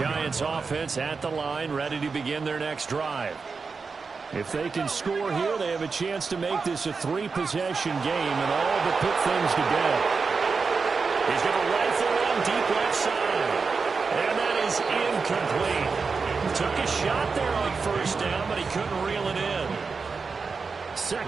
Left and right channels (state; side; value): quieter; left; 4.8 dB